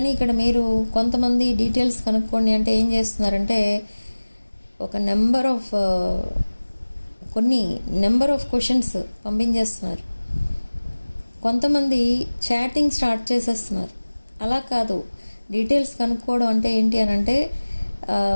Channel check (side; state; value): both; inverted; correlation -1.00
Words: ఇక్కడ మీరు కొంతమంది డీటెయిల్స్ కనుక్కోండి అంటే ఏం చేస్తున్నారంటే, ఒక నెంబర్ ఆఫ్ క్వశ్చన్స్ పంపించేస్తున్నారు. కొంతమంది చాటింగ్ స్టార్ట్ చేసేస్తున్నారు. అలా కాదు, డీటెయిల్స్ కనుక్కోవడం అంటే ఏంటి అని అంటే,